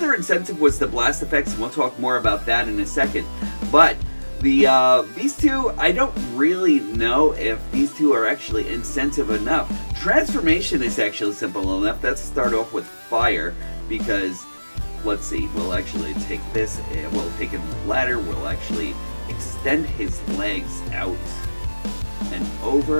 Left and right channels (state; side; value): inverted; both; correlation -1.00